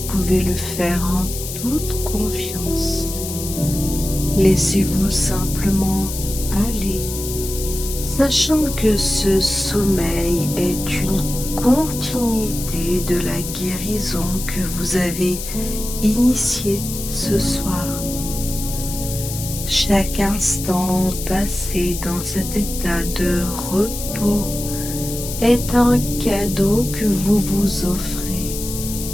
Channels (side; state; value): left; noise; hiss, 8 dB below the sound